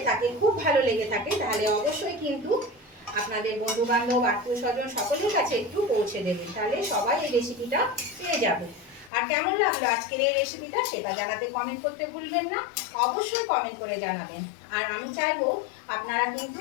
থাকে, খুব ভালো লেগে থাকে, তাহলে অবশ্যই কিন্তু আপনাদের বন্ধু বান্ধব আত্মীয় স্বজন সকলের কাছে একটু পৌঁছে দেবেন, তাহলে সবাই এই রেসিপিটা পেয়ে যাবে। আর কেমন লাগলো আজকের এই রেসিপিটা সেটা জানাতে কমেন্ট করতে ভুলবেন না, অবশ্যই কমেন্ট করে জানাবেন। আর আমি চাইবো আপনারা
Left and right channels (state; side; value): drops out; right; at 9.1 s